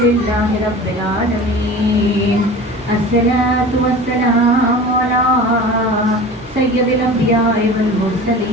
لله رب العالمين. الصلاة والسلام على سيد الأنبياء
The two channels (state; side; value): normal; both; correlation 0.37